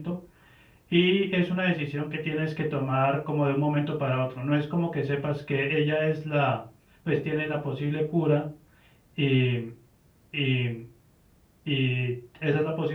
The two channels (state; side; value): identical; both; correlation 1.00